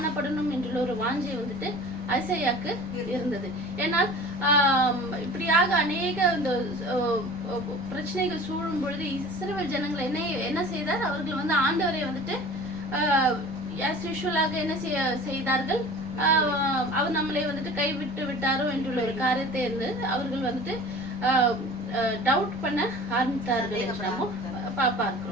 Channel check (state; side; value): noise; right; rumble, 18 dB below the sound